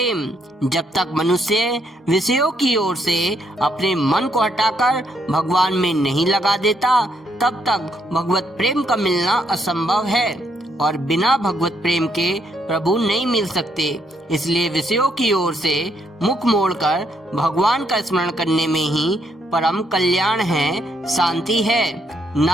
जब तक मनुष्य विषयों की ओर से अपने मन को हटाकर भगवान में नहीं लगा देता, तब तक भगवत प्रेम का मिलना असंभव है और बिना भगवत प्रेम के प्रभु नहीं मिल सकते। इसलिए विषयों की ओर से मुख मोड़कर भगवान का स्मरण करने में ही परम कल्याण है, शांति है।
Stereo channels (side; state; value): both; normal; correlation 0.74